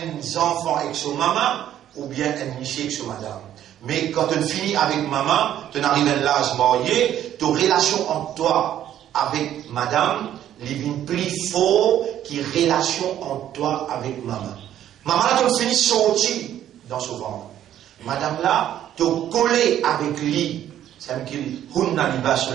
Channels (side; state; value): left; quieter; 11.3 dB